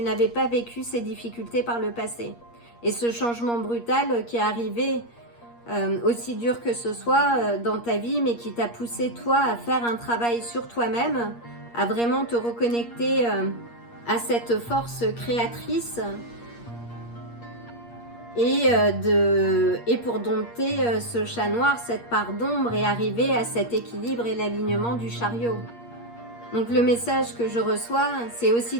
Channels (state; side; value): late; right; 8.5 ms